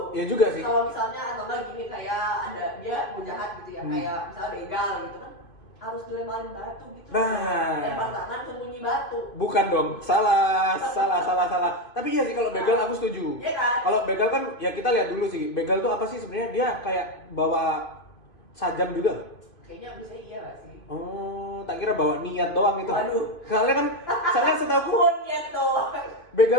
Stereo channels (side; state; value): right; late; 2.5 ms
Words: Ya juga sih. Kalau misalnya atau enggak gini kayak ada dia mau jahat gitu ya, kayak misalnya begal gitu kan harus dilemparin batu gitu. Nah. Lempar tangan sembunyi batu. Bukan dong, salah. Tapi iya sih kalau begal aku setuju. Iya kan? Kalau begal kan ya kita lihat dulu sih, begal tuh apa sih sebenarnya? Dia kayak bawa sajam juga nggak? Kayaknya bisa iya gak sih? Oh, tak kira bawa niat doang itu. Waduh. Soalnya setahu Niat doang.